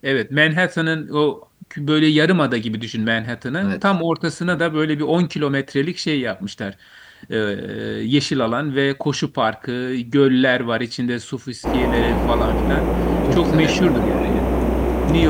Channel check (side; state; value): both; identical; correlation 1.00